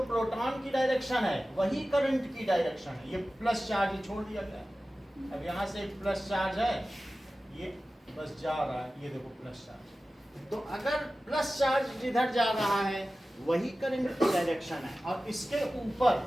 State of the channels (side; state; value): both; normal; correlation 0.95